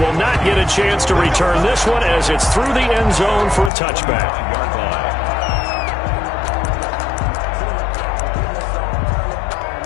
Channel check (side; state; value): right; drops out; at 3.7 s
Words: not get a chance to return this one as it's through the end zone for a touchback.